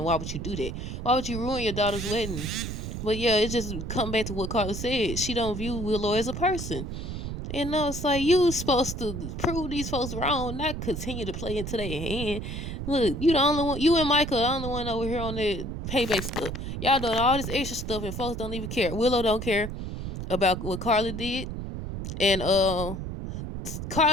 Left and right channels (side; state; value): right; noise; rumble, 6 dB below the sound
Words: why would you do that? Why would you ruin your daughter's wedding? But yeah, it just come back to what Carla said. She don't view Willow as a person. And it's like you supposed to prove these folks wrong, not continue to play into their hand. Look, you the only one. You and Michael the only one over here on the payback stuff. Y'all doing all this extra stuff, and folks don't even care. Willow don't care about what Carla did, and